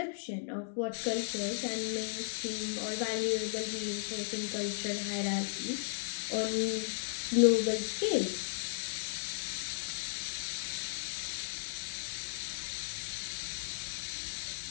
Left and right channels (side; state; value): right; silent; digital silence